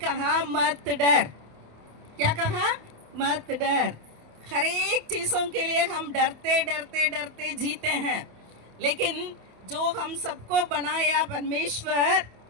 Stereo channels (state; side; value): late; left; 28 ms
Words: मत डर। क्या कहा? मत डर। हर एक चीज़ों के लिए हम डरते डरते डरते जीते हैं, लेकिन जो हम सबको बनाया परमेश्वर,